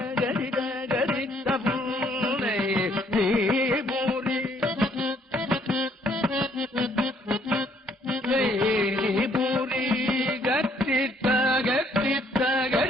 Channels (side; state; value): both; normal; correlation 0.66